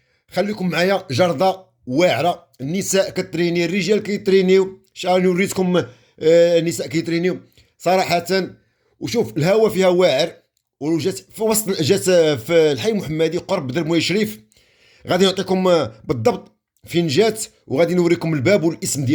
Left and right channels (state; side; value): identical; both; correlation 1.00